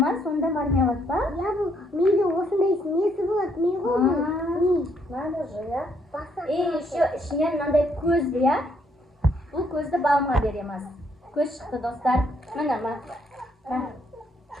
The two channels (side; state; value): both; normal; correlation 0.71